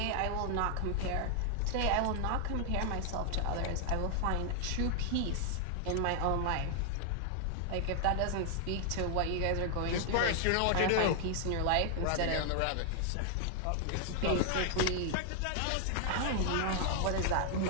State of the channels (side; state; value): both; different; correlation 0.00